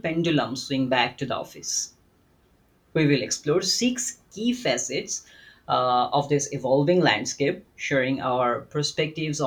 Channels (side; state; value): both; identical; correlation 1.00